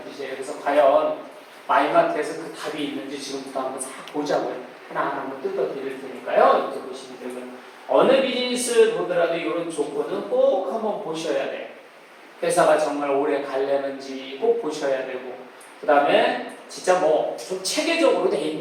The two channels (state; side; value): identical; both; correlation 1.00